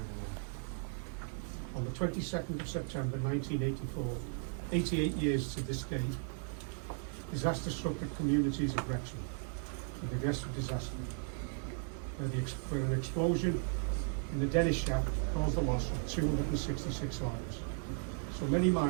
On the 22nd of September 1984, 88 years to this day, disaster struck the communities of Wrexham with the Gresford Disaster, where an explosion in the Dennis shaft caused the loss of 266 lives. So many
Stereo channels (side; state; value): left; silent; 54 dB below the other